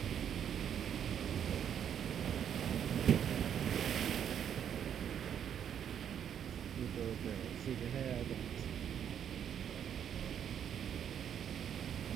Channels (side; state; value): left; quieter; 9.0 dB